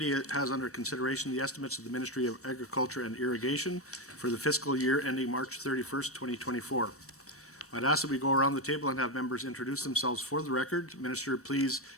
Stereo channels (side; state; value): both; normal; correlation 0.11